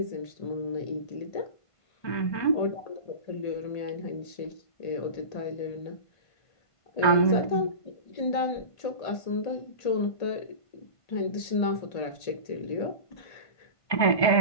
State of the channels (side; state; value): right; late; 1.8 ms